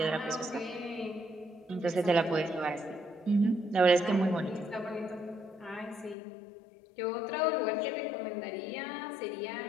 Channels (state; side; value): drops out; right; at 6.2 s